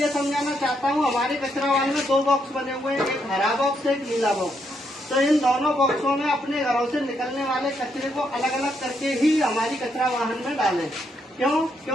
समझाना चाहता हूँ, हमारे कचरा वाहन में 2 बॉक्स बने हुए हैं, एक हरा बॉक्स है, एक नीला बॉक्स। तो इन दोनों बॉक्सों में अपने घरों से निकलने वाले कचरे को अलग अलग करके ही हमारी कचरा वाहन में डालें। क्यों?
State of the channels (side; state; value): both; normal; correlation 0.77